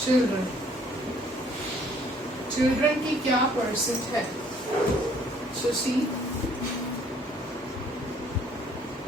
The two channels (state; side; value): normal; both; correlation 0.60